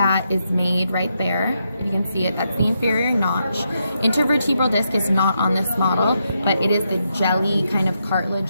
is made right there. If you can see it, that's the inferior notch. Intervertebral disc is not on this model, but it is the jelly kind of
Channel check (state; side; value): inverted; both; correlation -0.82